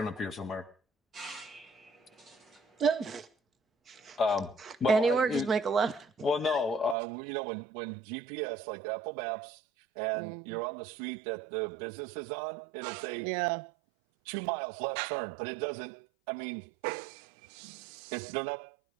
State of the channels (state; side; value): drops out; left; at 7.0 s